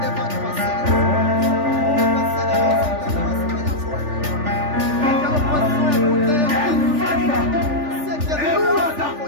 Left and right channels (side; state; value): left; late; 3.4 ms